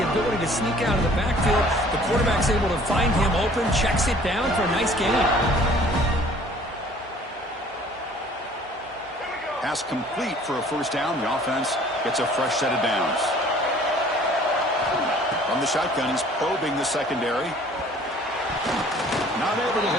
ability to sneak out of the backfield. The quarterback's able to find him open, checks it down for a nice gain. Pass complete for a first down. The offense gets a fresh set of downs. From the shotgun, he's probing the secondary. Not able to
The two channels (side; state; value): both; normal; correlation 0.53